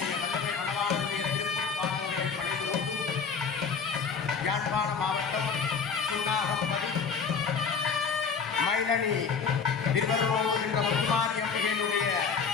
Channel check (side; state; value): right; quieter; 5.8 dB